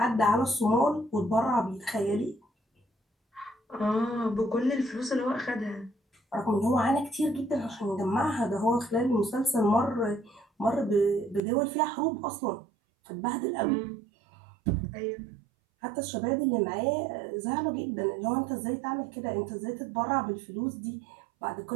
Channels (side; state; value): left; drops out; at 11.4 s